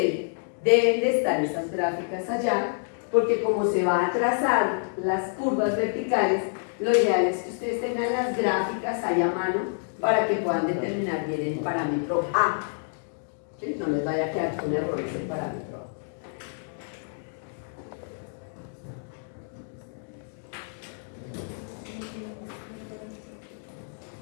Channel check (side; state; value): right; silent; digital silence